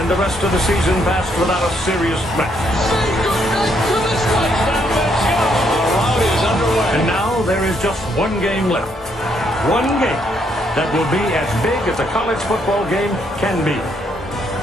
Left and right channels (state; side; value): normal; both; correlation 0.73